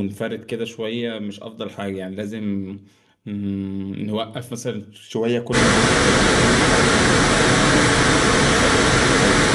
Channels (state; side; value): identical; both; correlation 1.00